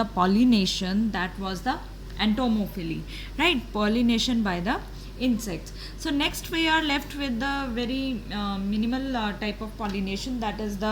pollination, that was the entomophily, right? Pollination by the insects. So, next we are left with the very minimal type of pollination, that is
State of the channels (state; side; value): identical; both; correlation 1.00